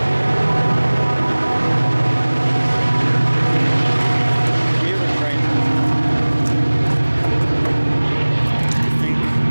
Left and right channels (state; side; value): inverted; both; correlation -1.00